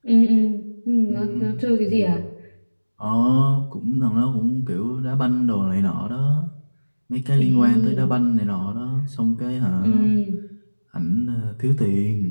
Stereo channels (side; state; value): both; inverted; correlation -1.00